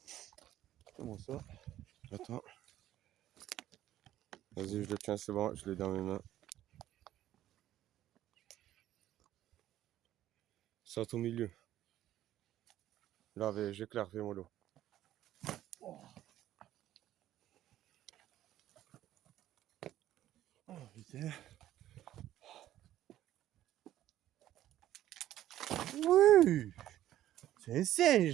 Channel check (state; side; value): quieter; left; 13.0 dB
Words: Comment ça? Attends. Vas-y, je le tiens, c'est bon, je l'ai dans mes mains. Saute au milieu. Là, j'éclaire, fais-moi l'eau. Oh putain. Oui! C'est un